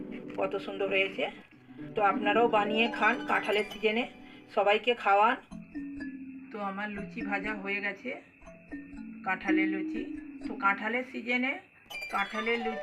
কত সুন্দর হয়েছে। তো আপনারাও বানিয়ে খান কাঁঠালের সিজনে, সবাইকে খাওয়ান। তো আমার লুচি ভাজা হয়ে গেছে, কাঁঠালের লুচি। তো কাঁঠালের সিজনে কাঁঠালের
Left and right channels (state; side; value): identical; both; correlation 1.00